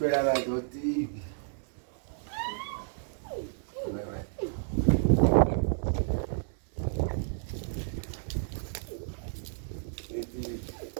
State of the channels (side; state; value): left; silent; 57 dB below the other